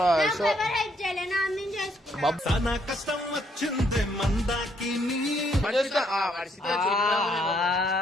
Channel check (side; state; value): both; normal; correlation 0.71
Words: కష్టం వచ్చింది మందాకి